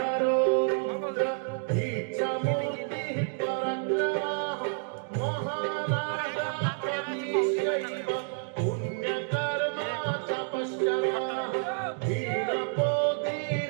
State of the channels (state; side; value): silent; left; 58 dB below the other